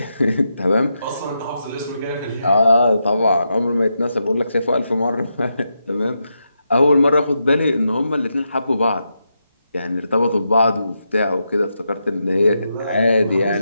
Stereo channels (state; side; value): inverted; both; correlation -0.85